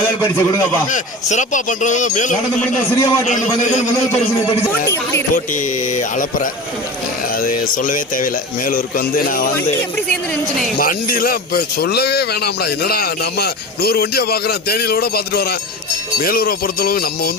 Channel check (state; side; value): normal; both; correlation 0.30